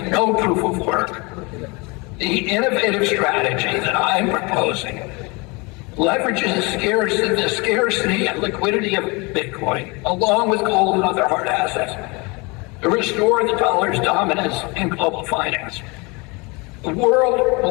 no proof of work. The innovative strategy that I'm proposing leverages the scarcity and liquidity of Bitcoin, along with gold and other hard assets, to restore the dollar's dominance in global finance. The world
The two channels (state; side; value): quieter; right; 27.6 dB